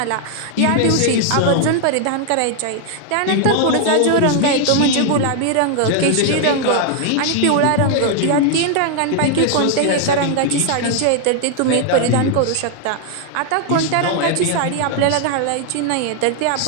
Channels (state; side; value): different; both; correlation 0.00